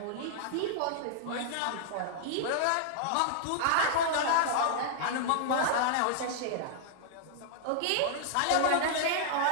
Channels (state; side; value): different; both; correlation -0.01